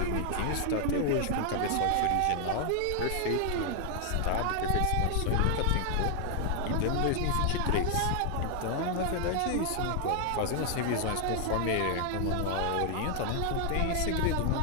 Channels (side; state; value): both; different; correlation 0.00